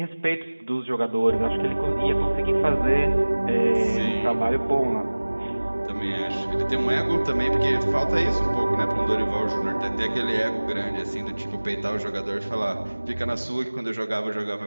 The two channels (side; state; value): both; inverted; correlation -1.00